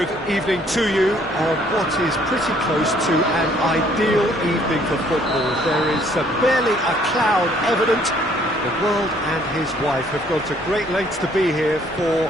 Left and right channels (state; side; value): normal; both; correlation 0.62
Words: evening to you on what is pretty close to an ideal evening for football. There is barely a cloud evident. The world and his wife have gone to great lengths to be here